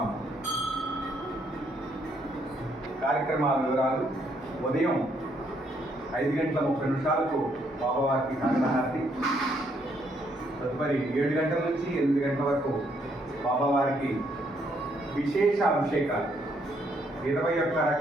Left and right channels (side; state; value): both; normal; correlation 0.71